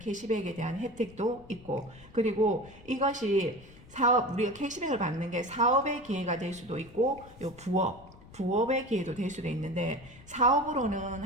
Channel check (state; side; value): noise; left; rumble, 21 dB below the sound